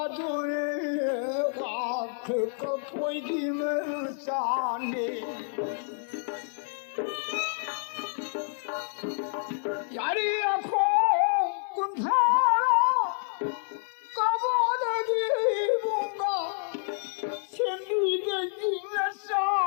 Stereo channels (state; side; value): silent; right; 59 dB below the other